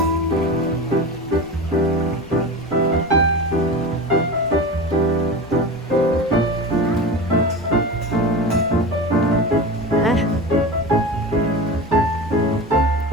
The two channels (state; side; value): noise; left; rumble, 23 dB below the sound